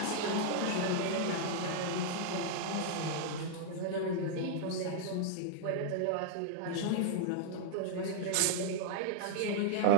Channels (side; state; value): both; different; correlation -0.01